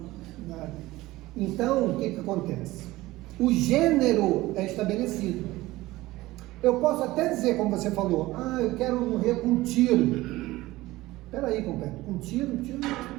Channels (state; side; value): quieter; left; 18.3 dB